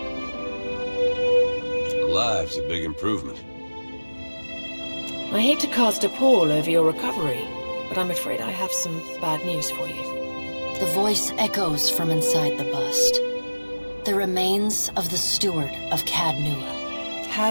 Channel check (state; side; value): inverted; both; correlation -1.00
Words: Alive's a big improvement. I hate to cast a pall over your recovery, but I'm afraid I have some bad news for you. The voice echoes from inside the bust. The remains of the steward of Cad Nua.